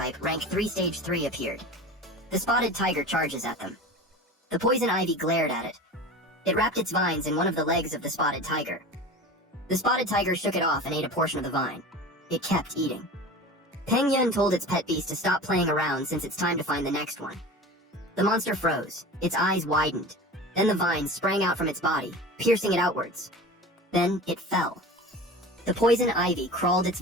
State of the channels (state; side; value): normal; both; correlation 0.34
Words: rank 3 stage 3 appeared. The spotted tiger charges at them. The poison ivy glared at it. It wrapped its vines in one of the legs of the spotted tiger. The spotted tiger shook it off and ate a portion of the vine. It kept eating. Peng Yun told its pet beast to stop playing around since it's time to find the next one. The monster froze. Its eyes widened. Then the vines sprang out from its body, piercing it outwards. Then it fell. The poison ivy crawled its